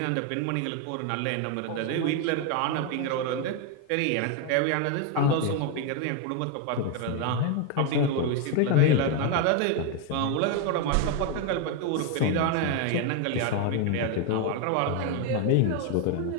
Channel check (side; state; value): both; different; correlation 0.01